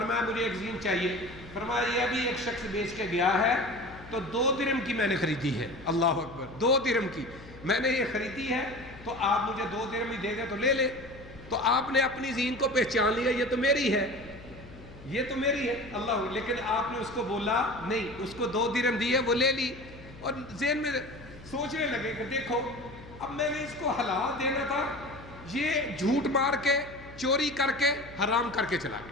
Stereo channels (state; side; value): noise; left; hum, 18 dB below the sound